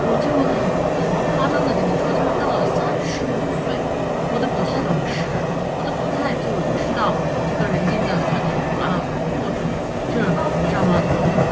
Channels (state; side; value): identical; both; correlation 1.00